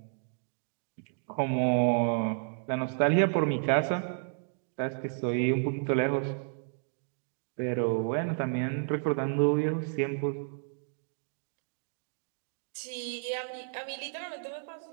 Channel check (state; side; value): silent; left; digital silence